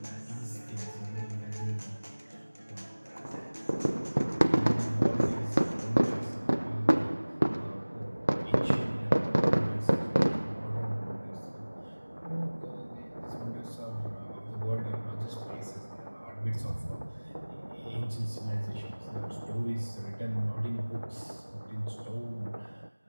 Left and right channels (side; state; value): both; inverted; correlation -1.00